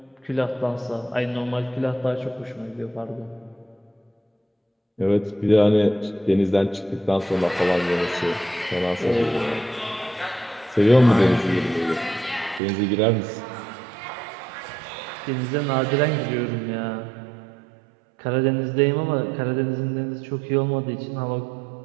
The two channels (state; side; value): drops out; left; at 12.6 s